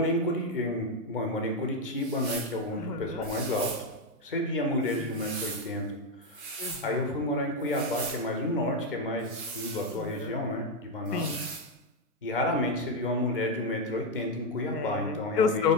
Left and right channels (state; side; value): normal; both; correlation 0.05